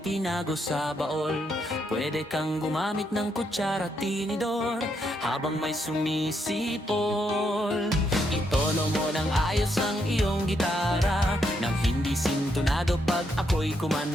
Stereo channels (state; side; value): normal; both; correlation 0.77